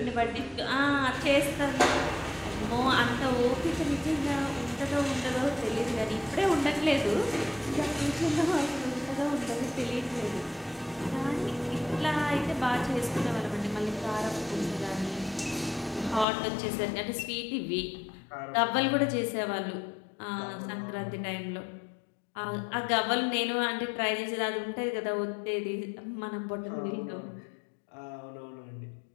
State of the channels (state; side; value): drops out; right; at 16.2 s